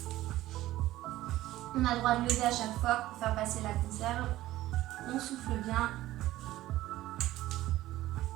On a le droit de lever à chaque fois pour faire passer la conserve. On souffle bien.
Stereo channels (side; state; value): left; quieter; 15.5 dB